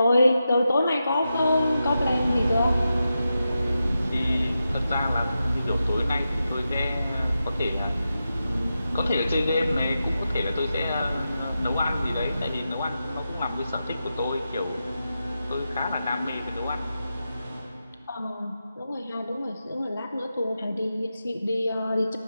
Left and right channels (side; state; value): both; inverted; correlation -0.89